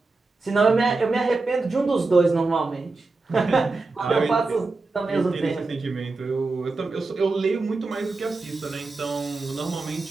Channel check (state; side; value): quieter; left; 3.7 dB